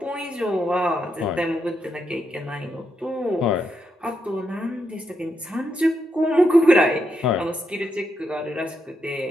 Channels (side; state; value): both; normal; correlation 0.82